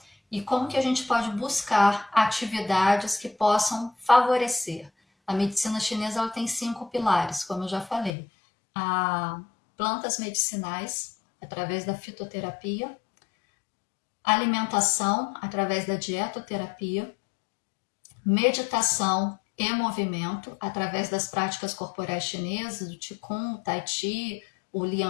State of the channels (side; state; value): right; drops out; at 8.1 s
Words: E como que a gente pode buscar atividades que possam favorecer? A medicina chinesa ela tem 5 pilares, como eu já falei. Plantas medicinais, através da fitoterapia. Alimentação, através da dietoterapia. Meditação e movimento, através das práticas corporais chinesas, o Qigong, o Tai Chi, o